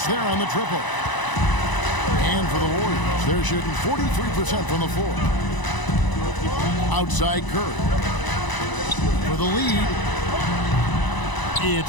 there on the triple. And for the Warriors, they're shooting 43% from the floor. Outside Curry. For the lead.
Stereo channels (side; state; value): right; late; 1.0 ms